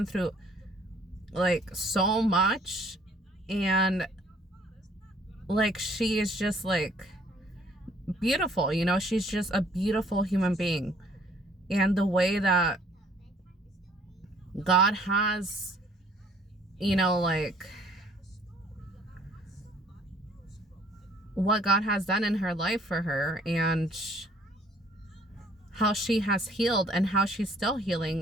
through like so much, and like she is just like beautiful, you know, she's just a beautiful human being. And the way that God has, you know, like what God has done in her life for her, and how she has healed, and how she's still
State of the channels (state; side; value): normal; both; correlation 0.59